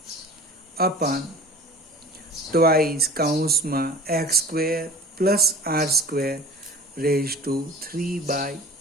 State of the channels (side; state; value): both; normal; correlation 0.43